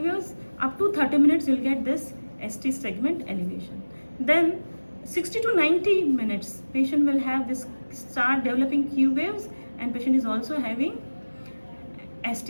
Up to 30 minutes you'll get this ST segment elevation. Then 60 to 90 minutes patient will have this start developing Q waves, and patient is also having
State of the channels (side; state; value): both; inverted; correlation -1.00